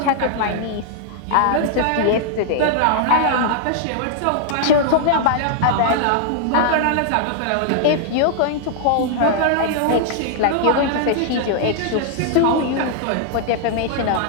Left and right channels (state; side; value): different; both; correlation -0.01